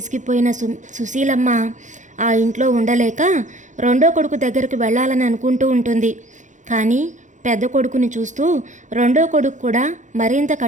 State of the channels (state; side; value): late; left; 0.36 ms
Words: సుశీలమ్మ ఆ ఇంట్లో ఉండలేక రెండో కొడుకు దగ్గరకు వెళ్ళాలని అనుకుంటూ ఉంటుంది. కానీ పెద్ద కొడుకుని చూస్తూ రెండో కొడుకు కూడా మరింత